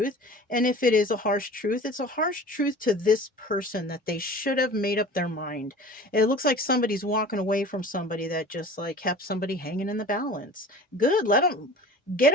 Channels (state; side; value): normal; both; correlation 0.41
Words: And if it is a harsh truth, it's a harsh truth to this person that they should have made up their mind. It looks like somebody's walking away from somebody that just like kept somebody hanging in the balance. Good. Let them get